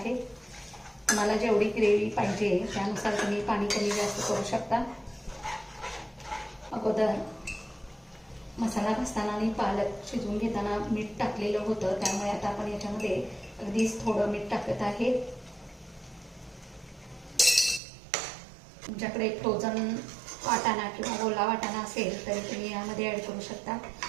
तुम्हाला जेवढी ग्रेव्ही पाहिजे त्यानुसार तुम्ही पाणी कमी जास्त करू शकता. अगोदर मसाला घासताना आणि पालक शिजवून घेताना मीठ टाकलेलं होतं, त्यामुळे आता आपण याच्यामध्ये अगदीच थोडं मीठ टाकत आहे. तुमच्याकडे फ्रोझन वाटाणा किंवा ओला वाटाणा असेल तरी तुम्ही यामध्ये ॲड करू शकता.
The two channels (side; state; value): left; drops out; at 17.8 s